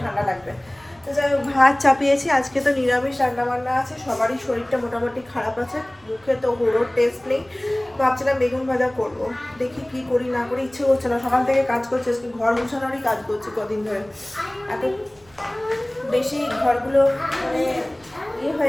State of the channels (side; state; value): right; noise; rumble, 30 dB below the sound